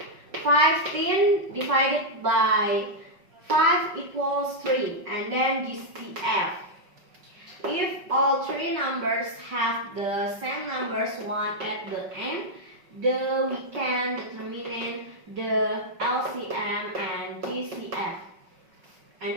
15 divided by 5 equals 3. And then GCF. If all three numbers have the same numbers 1 at the end, we can determine the LCM and GCF.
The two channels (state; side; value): late; left; 5.3 ms